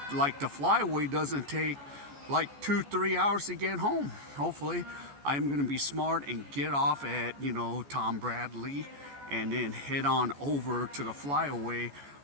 like the flyaway doesn't take like 2-3 hours to get home. Hopefully I'm gonna be smart and get off at Tom Bradley, and then head on over to the flyaway,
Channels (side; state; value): left; late; 14 ms